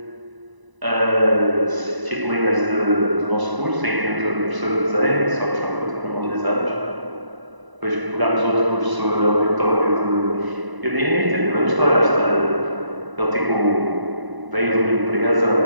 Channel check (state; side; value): late; left; 1.0 ms